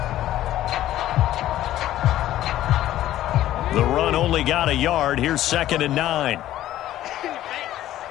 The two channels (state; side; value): quieter; right; 13.5 dB